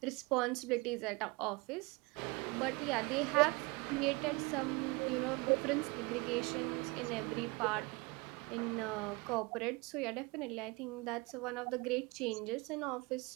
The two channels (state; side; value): quieter; left; 26.4 dB